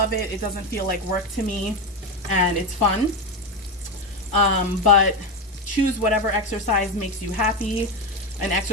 it, it doesn't feel like work to me, and it's fun. But choose whatever exercise makes you happy, an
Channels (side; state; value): both; normal; correlation 0.15